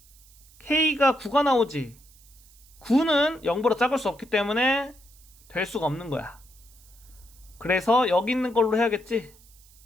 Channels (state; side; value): noise; right; hiss, 26 dB below the sound